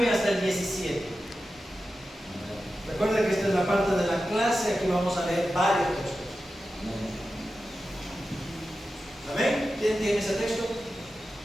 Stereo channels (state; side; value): normal; both; correlation 0.92